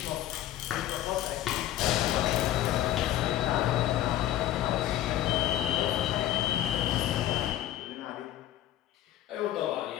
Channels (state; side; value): quieter; right; 13.1 dB